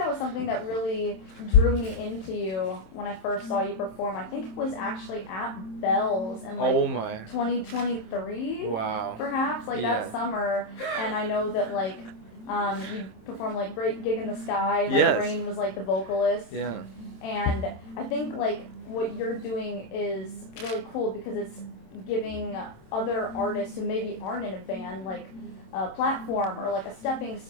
was something that really drew me into you when I first saw you perform. I think it was actually at Bell's in 2023. Wow. Perhaps that summer. And I know that you performed Great Gig in the Sky. Yes. Rain was the vocalist. Yeah. And I think what you're doing is really cool because it's giving other artists who maybe aren't in a band a platform or a stepping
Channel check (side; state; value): right; late; 27 ms